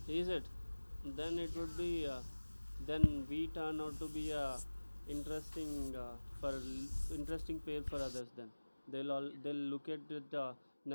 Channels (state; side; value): inverted; both; correlation -1.00